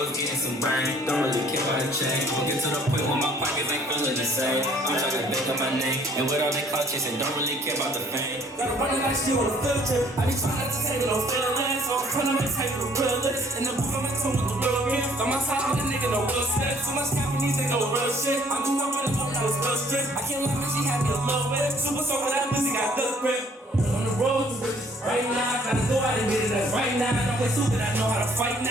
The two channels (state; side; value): normal; both; correlation 0.59